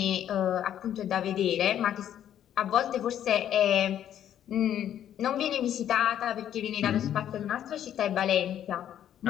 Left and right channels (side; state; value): right; quieter; 10.5 dB